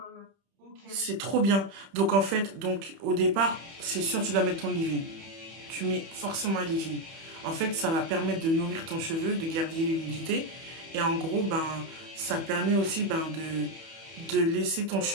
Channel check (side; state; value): left; late; 31 ms